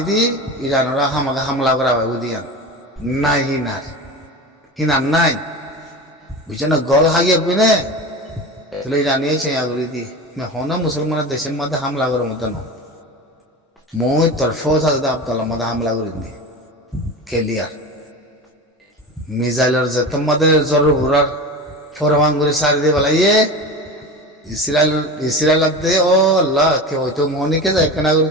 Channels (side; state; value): both; normal; correlation 0.28